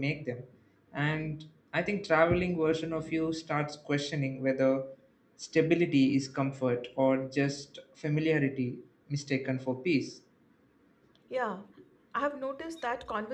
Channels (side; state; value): both; identical; correlation 1.00